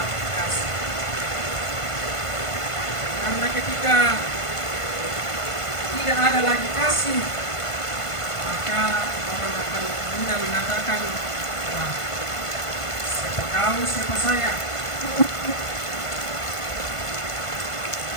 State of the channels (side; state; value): right; late; 1.5 ms